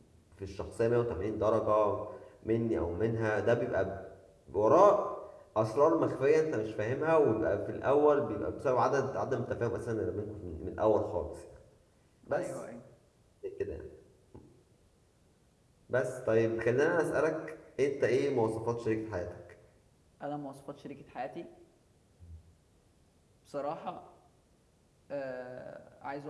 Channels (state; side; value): identical; both; correlation 1.00